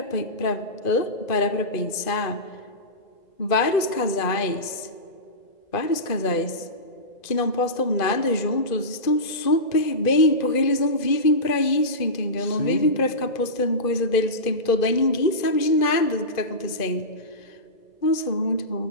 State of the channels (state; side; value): late; right; 2.5 ms